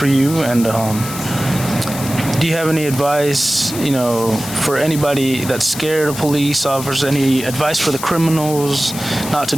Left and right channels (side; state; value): left; noise; hiss, 10 dB below the sound